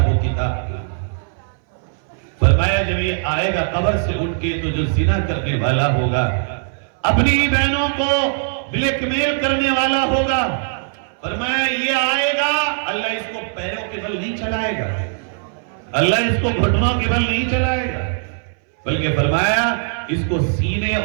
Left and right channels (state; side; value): silent; left; 62 dB below the other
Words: و کتاب. فرمایا جب یہ آئے گا قبر سے اٹھ کے تو جو زنا کرنے والا ہوگا، اپنی بہنوں کو بلیک میل کرنے والا ہوگا، فرمایا یہ آئے گا، اللہ اس کو پیروں کے بل نہیں چلائے گا، اللہ اس کو گھٹنوں کے بل نہیں چلائے گا، بلکہ فرمایا اس کو سینے